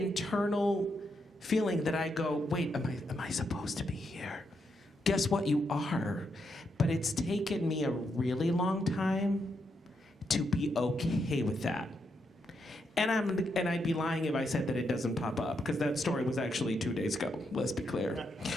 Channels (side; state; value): both; normal; correlation 0.81